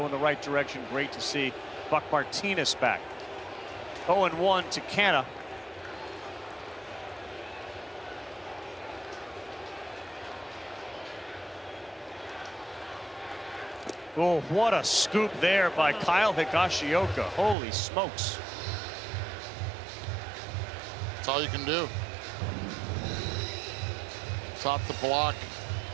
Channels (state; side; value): drops out; left; at 17.6 s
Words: in the right direction. Great to see Buck Martinez back. 0-1 to Canada. Oh, what a scoop there by Kyle Higashioka. Holy smokes. That's all you can do. Top the block.